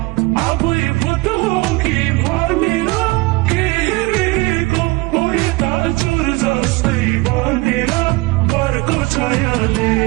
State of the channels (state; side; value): quieter; left; 23.2 dB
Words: आबुई भूतों की भनेर केहेरेको ओइ दाजुर जस्तै बनेर बरको छायाले